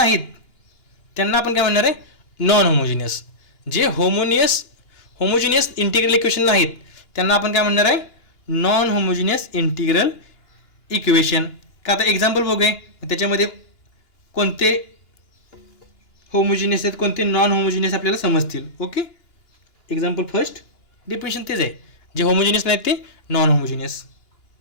त्यांना आपण काय म्हणणार आहे? Non homogeneous. जे होमोजिनियस इंटिग्रल इक्वेशन नाहीत त्यांना आपण काय म्हणणार आहे? Non homogeneous integral equation. का आता एक्झाम्पल बघूया त्याच्यामध्ये कोणते होमोजिनियस आहेत कोणते नॉन होमोजिनियस आपल्याला समजतील. ओके. एक्झाम्पल फर्स्ट डेफिनेशन तेच आहे. जे होमोजिनियस नाहीत ते non homogeneous.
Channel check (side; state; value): right; late; 2.9 ms